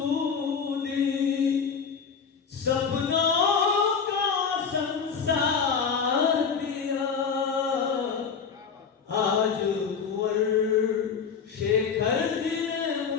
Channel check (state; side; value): quieter; right; 6.2 dB